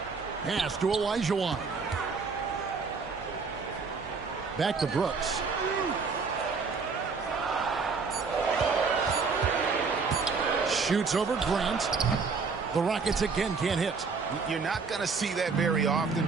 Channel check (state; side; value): quieter; left; 4.9 dB